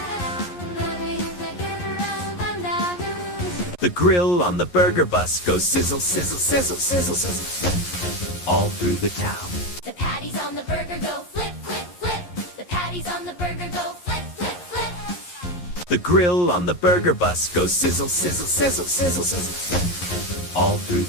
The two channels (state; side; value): late; right; 11 ms